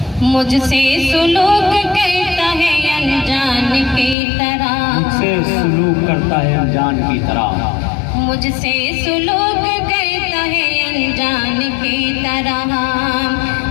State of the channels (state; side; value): drops out; right; at 4.2 s